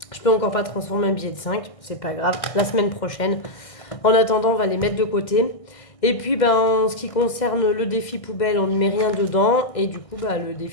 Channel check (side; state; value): right; late; 1.6 ms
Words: Je peux encore pas transformer un billet de 5, c'est pas grave. La semaine prochaine. En attendant, on va les mettre de côté. Et puis, en ce qui concerne le défi poubelle, on ne met rien dedans. Et du coup, le